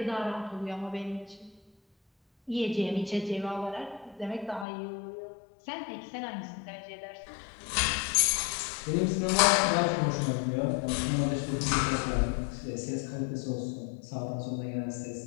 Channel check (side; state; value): right; drops out; at 4.7 s